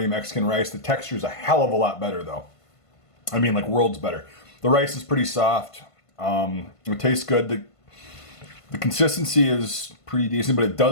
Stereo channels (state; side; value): late; right; 1.5 ms